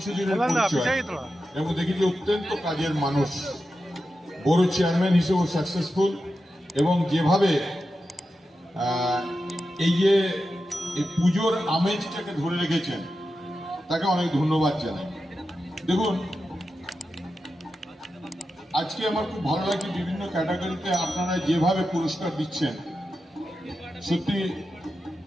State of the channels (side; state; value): both; normal; correlation 0.90